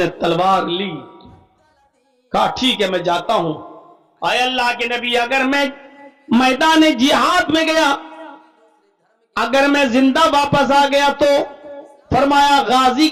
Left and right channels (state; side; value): identical; both; correlation 1.00